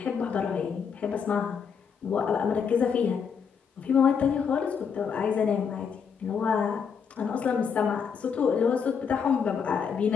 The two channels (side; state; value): right; quieter; 6.6 dB